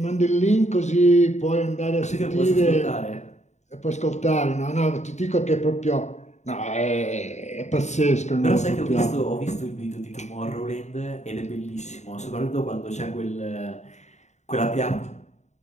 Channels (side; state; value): right; late; 0.34 ms